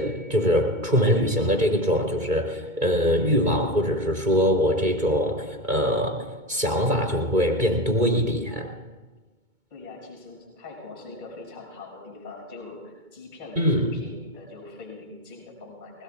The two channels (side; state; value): left; late; 2.2 ms